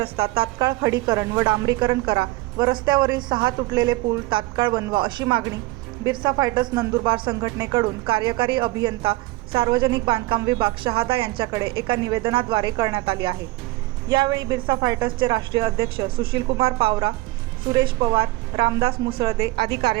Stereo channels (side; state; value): left; quieter; 20.1 dB